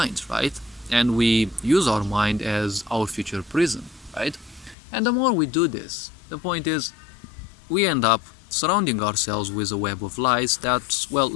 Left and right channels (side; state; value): right; drops out; at 4.8 s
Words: right? And we use our mind as our future prison, right? And the more we do this, the point is, we end up surrounding ourselves with a web of lies that, well,